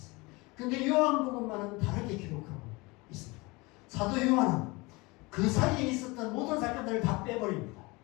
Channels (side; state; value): right; quieter; 24.6 dB